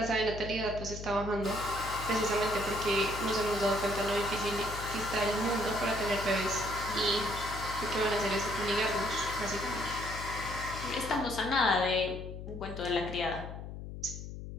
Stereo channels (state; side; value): noise; left; hum, 9 dB below the sound